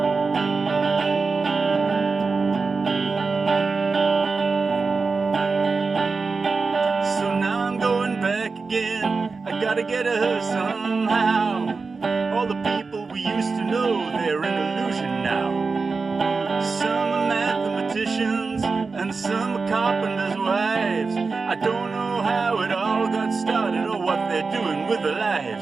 So now I'm going back again. I gotta get her somehow. All the people we used to know, they're an illusion now. Some are mathematicians and some are carpenters' wives. I don't know how it all got started or what they're doing with their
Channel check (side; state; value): left; quieter; 4.4 dB